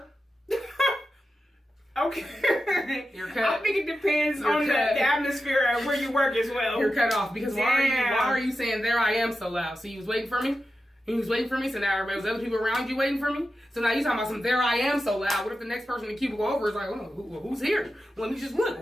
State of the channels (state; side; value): normal; both; correlation 0.91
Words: Okay. You're cut. I think it depends on the atmosphere and where you work as well. You're cut off because why are you saying "there I am" so loud? So you was waiting for me? He was waiting for me, so now there was other people around you waiting for me? So now you talking about some "there I am" so loud. What if the next person in the cubicle over is like, who's here? Let me just look.